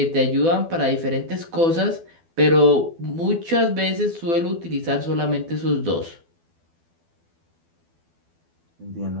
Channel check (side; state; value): left; late; 12 ms